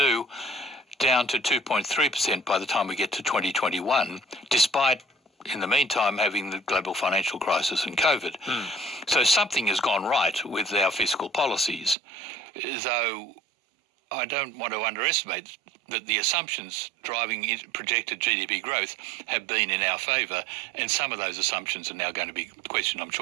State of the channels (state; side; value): drops out; left; at 12.0 s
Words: down to 2.3% by the time we get to 2021, despite, in the meantime, having the global financial crisis and COVID. So something has gone right with our fiscal policies, though I don't want to underestimate that the assumptions driving projected GDP growth have been in our favour, and some of those assumptions are now going to be questioned. I'm